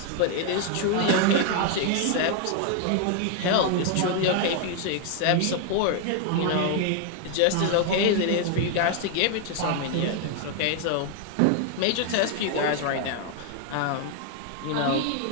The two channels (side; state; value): both; different; correlation 0.00